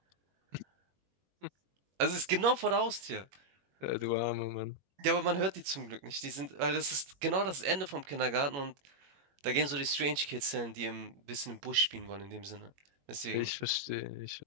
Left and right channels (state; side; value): late; left; 21 ms